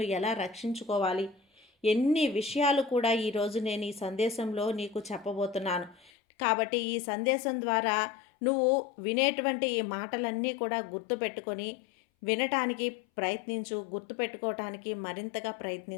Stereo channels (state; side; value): drops out; right; at 6.1 s